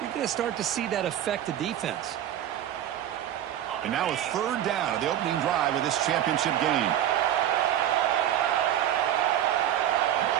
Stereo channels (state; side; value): quieter; left; 11.5 dB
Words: you're going to start to see that affect the defense. And now a third down of the opening drive of this championship game.